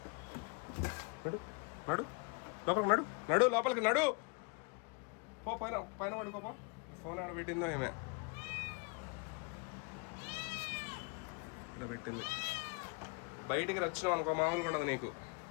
నడు లోపలికి నడు. పో పైన పడుకోపో. ఫోన్ ఆడ పెట్టిందో ఏమే, ఇక్కడ పెట్టింది. బయటికి వచ్చినావు అనుకో, మామూలుగా ఉండదు నీకు.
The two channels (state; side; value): quieter; right; 32.2 dB